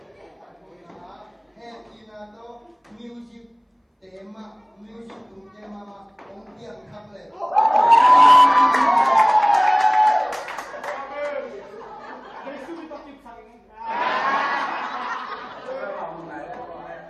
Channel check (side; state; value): both; identical; correlation 1.00